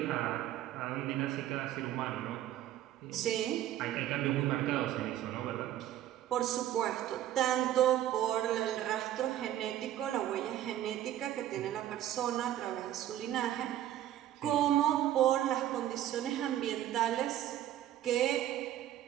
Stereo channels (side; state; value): left; quieter; 12.4 dB